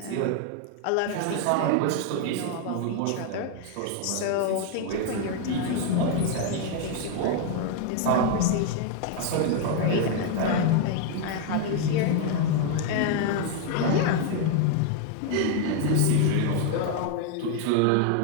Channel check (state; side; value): different; both; correlation 0.00